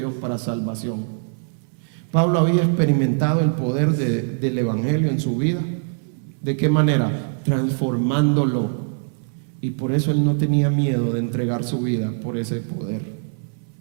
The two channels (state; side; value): silent; left; 64 dB below the other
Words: para salvación. Pablo había experimentado el poder del evangelio en su vida. ¿De qué manera? Transformándolo. Y por eso él no tenía miedo de entregar su vida por ese poder,